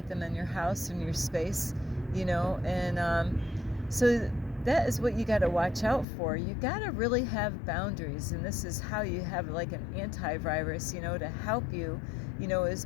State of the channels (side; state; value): right; drops out; at 6.1 s